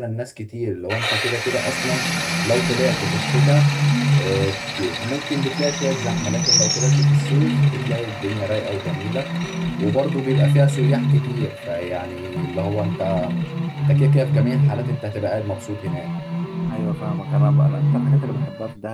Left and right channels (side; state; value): both; identical; correlation 1.00